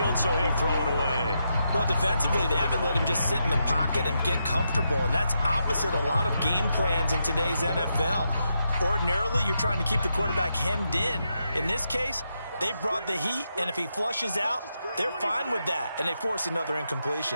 so he'll throw it away. Well, defensively, they haven't let him just sit in the pocket and get comfortable, and that's opposite a lot of game plans in today's NFL. Ordinarily, you're trying to keep the quarterback hemmed in. In this case, they brought the heat, and if he flushes out, they're fine with that, and they force another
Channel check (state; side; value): inverted; both; correlation -0.83